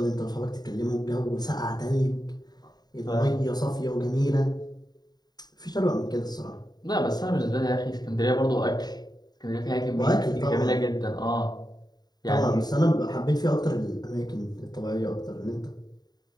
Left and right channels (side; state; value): right; late; 0.20 ms